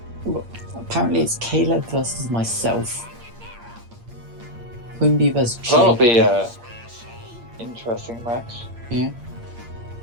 apparently it's Caleb versus myself, Quimby versus Jake. That'll be a interesting match. Yeah.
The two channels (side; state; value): left; late; 8.6 ms